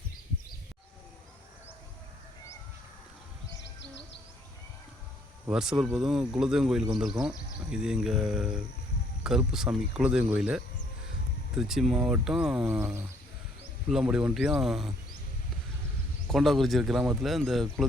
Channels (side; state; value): both; normal; correlation 0.65